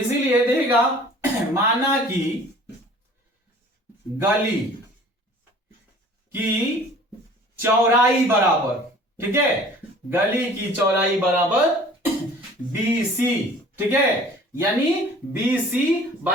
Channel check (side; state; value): both; normal; correlation 0.49